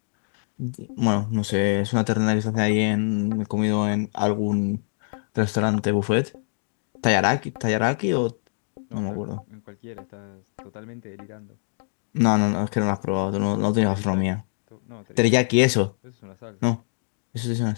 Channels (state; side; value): silent; right; digital silence